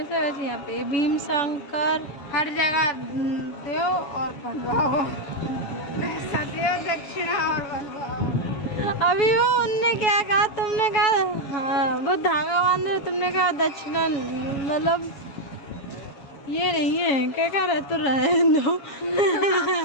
वैसे यहाँ पे भीम शंकर हर जगह दो और बनवाओ, पैसा दो दक्षिणा और बनवाओ। अभी वो उनने क्या कहा, तुमने कहा हाँ वो धागा बांध रहे, तुमने कहा दक्षिणा, मतलब ये नहीं है क्या कह रहे तो रहे दो।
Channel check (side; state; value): right; late; 7.2 ms